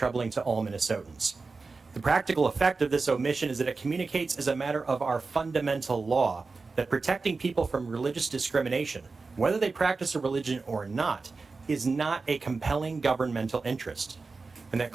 to all Minnesotans. The practical effect of this omission is that it communicates as a matter of our fundamental law that protecting people from religious discrimination, whether they practice a religion or not, is not a compelling governmental interest, and that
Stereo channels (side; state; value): left; quieter; 4.1 dB